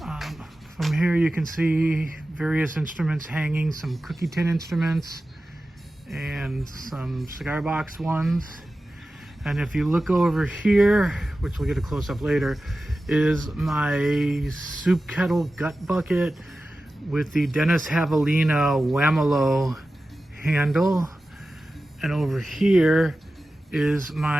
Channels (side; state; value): both; normal; correlation 0.94